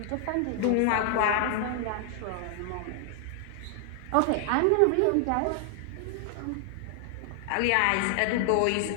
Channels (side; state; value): both; different; correlation 0.00